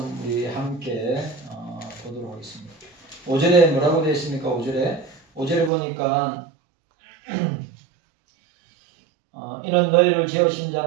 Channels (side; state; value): left; drops out; at 5.7 s